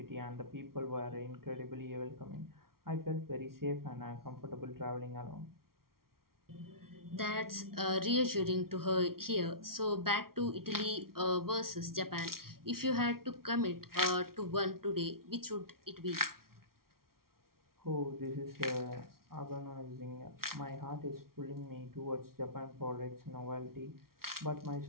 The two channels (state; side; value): late; left; 0.93 ms